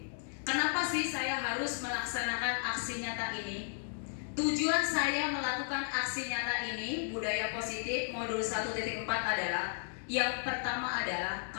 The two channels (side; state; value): right; silent; digital silence